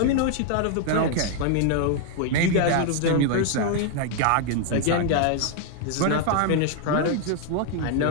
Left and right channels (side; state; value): both; different; correlation 0.00